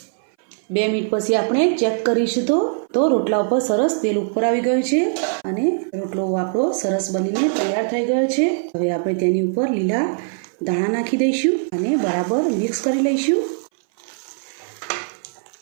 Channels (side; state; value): left; silent; 61 dB below the other